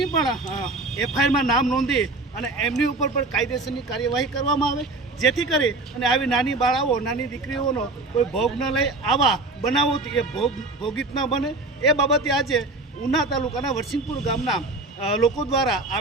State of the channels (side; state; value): left; quieter; 3.1 dB